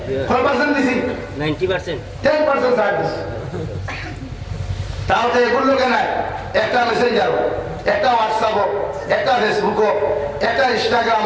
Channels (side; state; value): both; identical; correlation 1.00